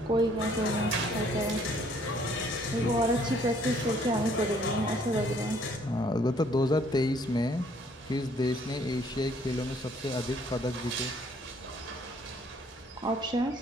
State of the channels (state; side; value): normal; both; correlation 0.62